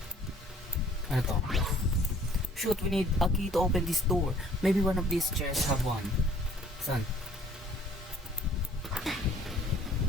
Ano to? Shoot, we need a key to open this door. Maybe one of these chairs have one. Saan?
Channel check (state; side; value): normal; both; correlation 0.57